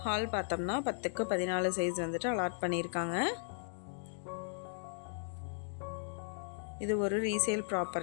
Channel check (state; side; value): silent; right; digital silence